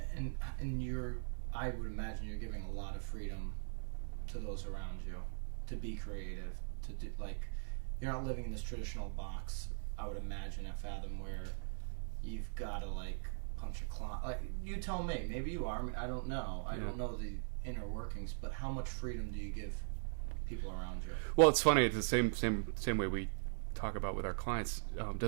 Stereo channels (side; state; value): left; silent; digital silence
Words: And I would imagine you're giving a lot of freedom to those around you to be creative, to do, like, you're not living in this traditional box, I would imagine, at Fathom, where you've got to, like, punch a clock. Like, you tell me, maybe you are, I don't know. I don't know the inner workings, but how much freedom do you give people around you? Well, it's funny, it's the same way we talk about with our clients.